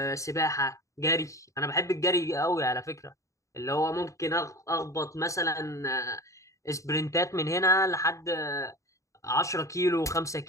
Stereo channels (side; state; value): right; late; 0.15 ms